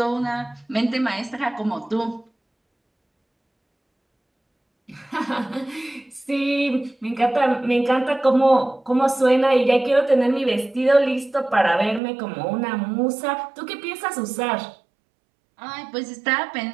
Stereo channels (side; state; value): left; drops out; at 12.0 s